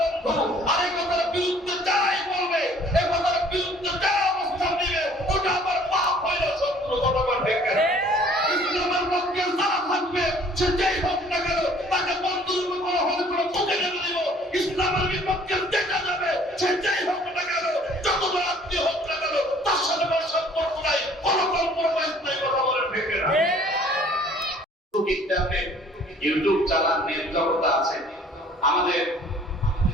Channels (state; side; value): normal; both; correlation 0.55